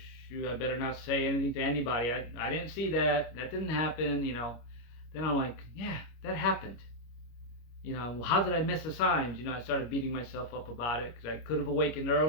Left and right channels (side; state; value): right; late; 25 ms